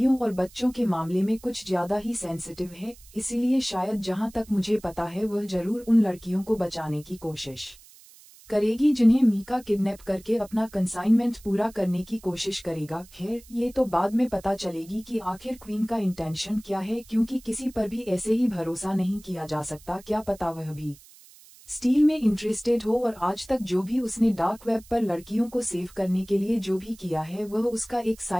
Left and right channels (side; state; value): right; noise; hiss, 23 dB below the sound